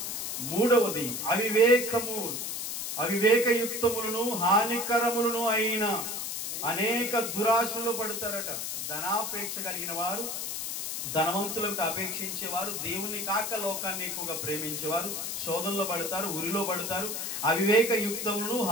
మూడవది అవివేకయుక్తములను హానికరములను అయిన అనేక దురాశలు పడతారట. ధనాపేక్ష కలిగిన వారు, ధనవంతులకు అపేక్షించేవారు, దేవుని కాక లోకాన్ని ఎక్కువగా ప్రేమించేవారు శోధనలో పడతారు, ఉరిలో పడతారు. అవివేకయుక్తములను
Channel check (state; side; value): noise; left; hiss, 4 dB below the sound